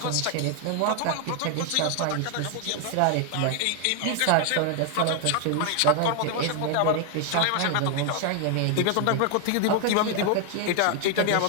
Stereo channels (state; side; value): different; both; correlation 0.00